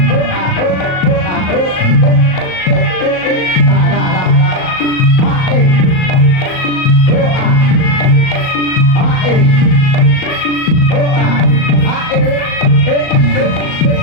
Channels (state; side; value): late; right; 38 ms